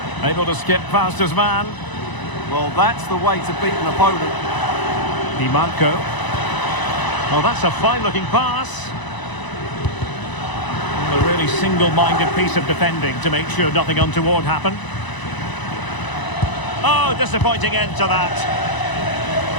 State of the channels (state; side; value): late; right; 1.0 ms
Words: Able to skip past his man. Well, that's the way to beat an opponent. Di Marco. Oh, that's a fine-looking pass. A really single-minded piece of defending to make sure nothing untoward happened. Oh, disappointing end to that.